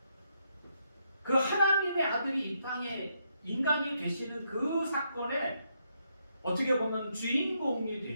그 하나님의 아들이 이 땅에 인간이 되시는 그 사건에 어떻게 보면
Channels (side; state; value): both; inverted; correlation -0.78